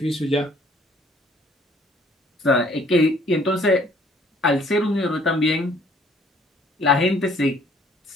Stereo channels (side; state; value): both; normal; correlation 0.59